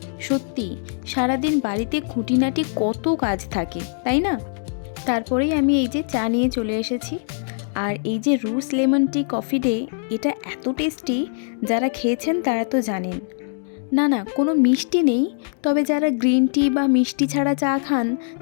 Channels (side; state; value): right; silent; digital silence